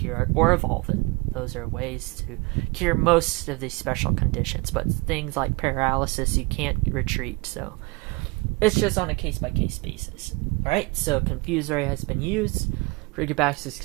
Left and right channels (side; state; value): left; quieter; 26.2 dB